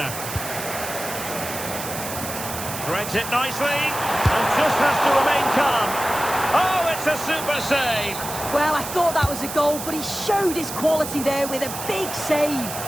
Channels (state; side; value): noise; right; hiss, 8 dB below the sound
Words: Threads it nicely. And just has to remain calm. Oh, it's a super save. Well, I thought that was a goal, but he showed his quality there with a big save.